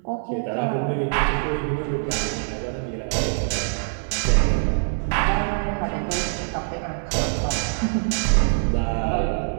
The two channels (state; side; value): silent; left; 63 dB below the other